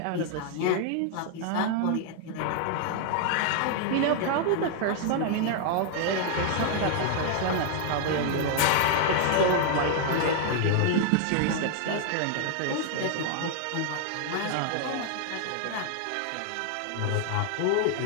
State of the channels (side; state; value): both; different; correlation 0.00